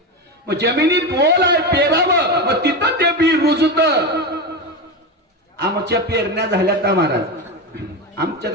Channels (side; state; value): both; normal; correlation 0.18